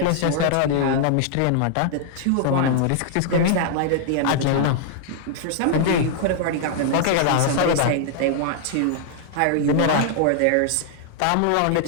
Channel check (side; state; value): both; different; correlation -0.01